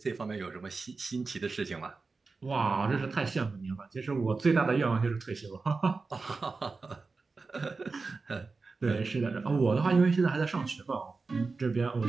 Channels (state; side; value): quieter; left; 4.1 dB